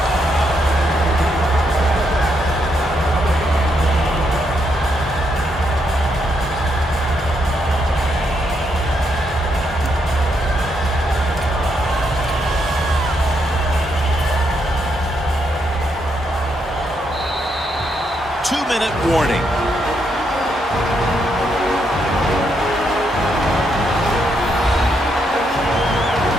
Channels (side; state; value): both; normal; correlation 0.78